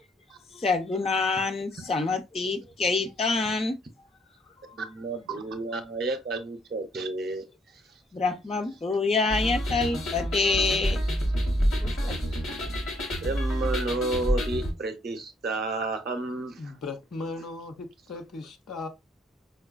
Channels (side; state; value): both; normal; correlation 0.68